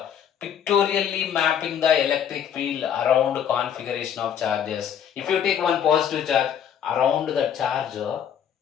pictorially mapping the electric field around configuration of charges. If you take one positive charge around the charge,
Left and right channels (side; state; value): right; quieter; 8.8 dB